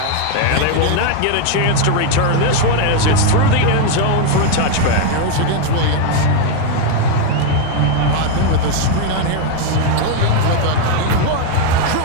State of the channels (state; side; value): different; both; correlation 0.01